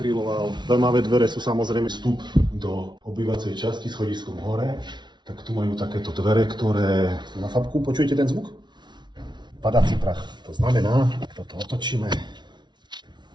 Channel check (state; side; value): late; left; 0.21 ms